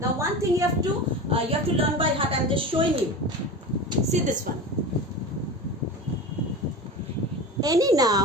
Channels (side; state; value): both; normal; correlation 0.29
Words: one thing you have to learn by heart. I'm just showing you. See this one. Any